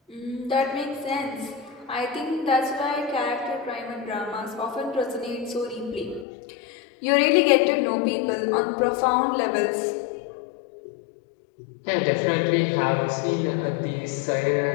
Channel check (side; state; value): right; drops out; at 6.2 s